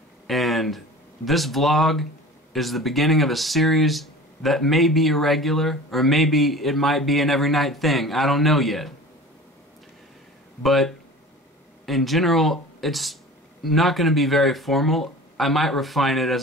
and this vlog is the beginning of a series that may be irregular, or maybe it might be an every night thing. I don't know yet. But in general, it's not going to be very formal. I might refine it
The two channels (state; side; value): normal; both; correlation 0.38